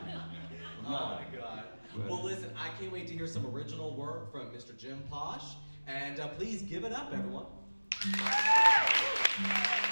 Oh my God. Well, listen, I can't wait to hear some original work from Mr. Jim Posh. And please give it up, everyone.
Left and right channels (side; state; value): both; inverted; correlation -1.00